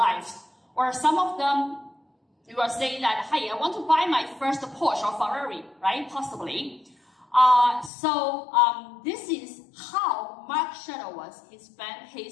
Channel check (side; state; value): right; drops out; at 7.9 s